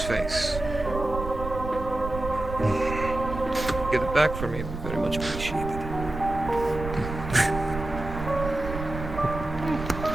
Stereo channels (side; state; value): right; noise; rumble, 8 dB below the sound